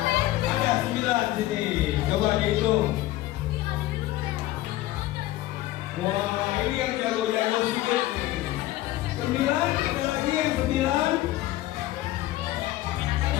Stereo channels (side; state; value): right; quieter; 16.0 dB